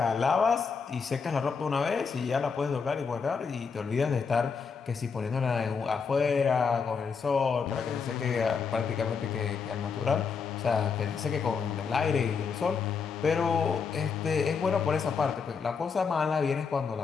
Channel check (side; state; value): right; quieter; 5.7 dB